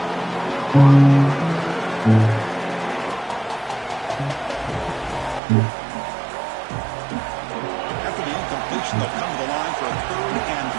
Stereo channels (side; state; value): left; drops out; at 5.4 s